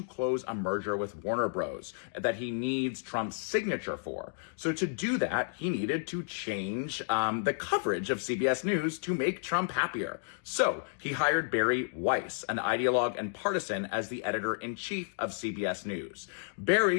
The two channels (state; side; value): silent; right; digital silence